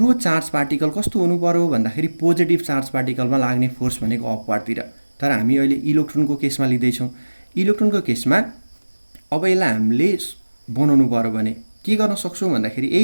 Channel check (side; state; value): both; inverted; correlation -1.00